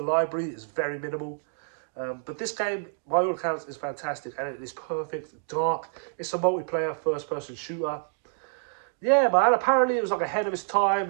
library is very minimal. But this game, by all accounts, is fantastic. And it is perfect, dark. It's a multiplayer first-person shooter. Yeah, man, apparently it was like ahead of its time.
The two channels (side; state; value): left; silent; digital silence